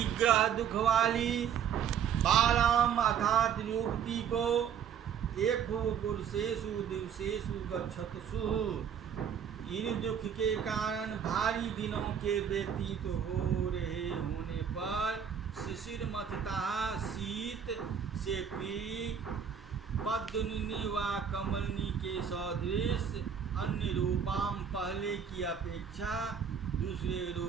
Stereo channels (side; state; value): left; quieter; 7.9 dB